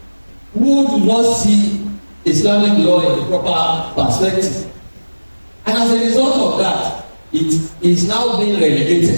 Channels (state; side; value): inverted; both; correlation -1.00